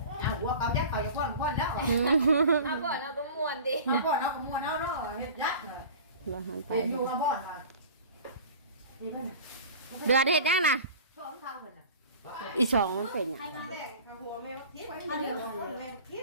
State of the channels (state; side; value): inverted; both; correlation -0.39